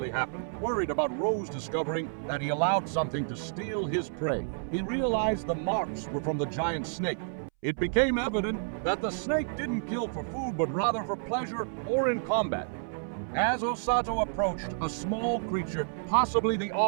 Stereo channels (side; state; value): left; silent; 58 dB below the other